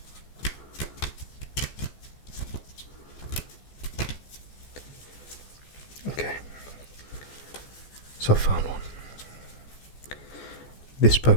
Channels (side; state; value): right; late; 14 ms